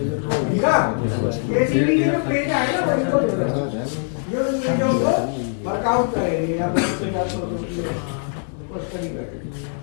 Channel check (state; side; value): silent; right; 55 dB below the other